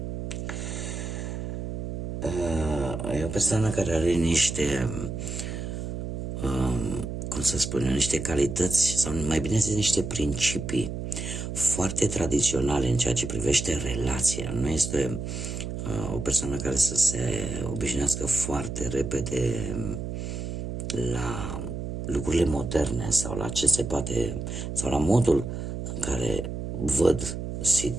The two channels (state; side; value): noise; right; hum, 5 dB below the sound